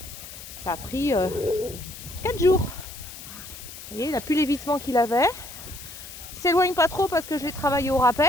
Ça a pris 4 jours. Vous voyez, il n'a plus l'évitement qu'il avait. Il s'éloigne pas trop parce que je l'ai travaillé au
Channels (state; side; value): noise; left; hiss, 14 dB below the sound